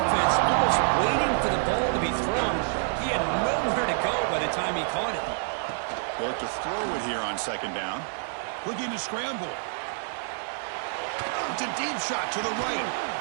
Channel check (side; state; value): left; silent; 60 dB below the other